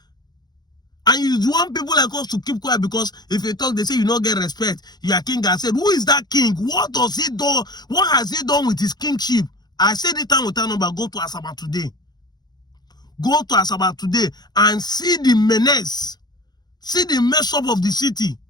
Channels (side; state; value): right; late; 0.20 ms